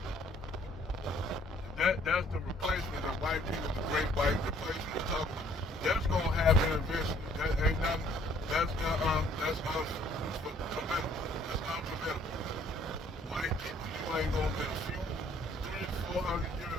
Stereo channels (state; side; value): normal; both; correlation 0.61